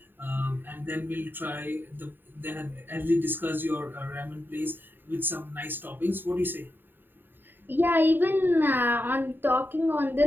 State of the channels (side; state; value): left; late; 0.094 ms